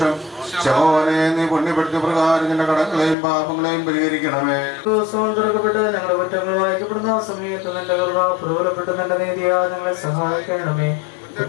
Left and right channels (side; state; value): right; drops out; at 3.2 s